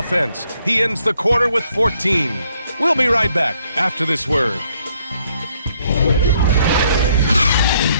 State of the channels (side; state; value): both; inverted; correlation -0.70